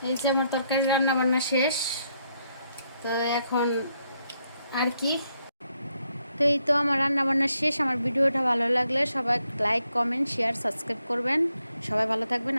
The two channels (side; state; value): both; inverted; correlation -0.77